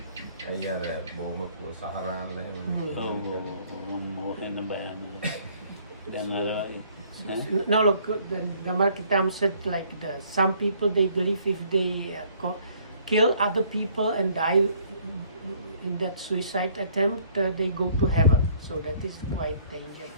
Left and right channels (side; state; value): both; inverted; correlation -0.60